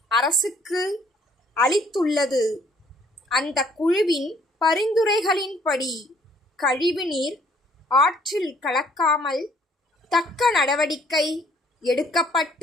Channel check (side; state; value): both; normal; correlation 0.62